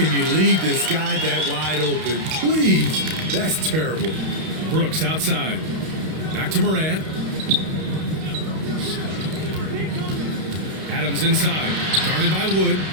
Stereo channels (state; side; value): late; left; 32 ms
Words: you leave this guy that wide open? Please. That's terrible. Brooks outside. Back to Morant. Adams inside. Guarded by Wood.